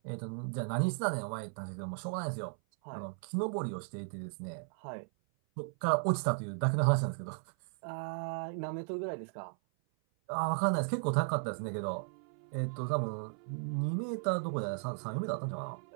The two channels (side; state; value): left; silent; 54 dB below the other